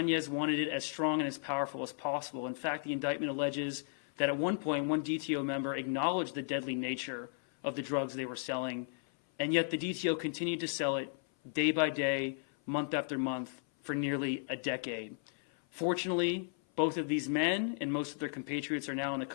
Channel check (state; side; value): silent; right; 55 dB below the other